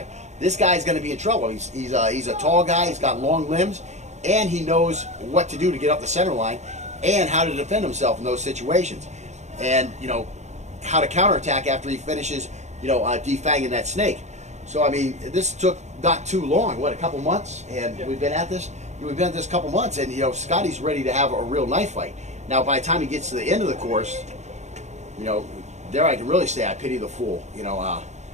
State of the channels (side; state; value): left; late; 0.33 ms